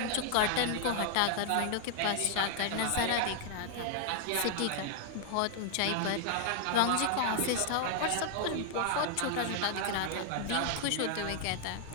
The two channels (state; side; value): different; both; correlation 0.00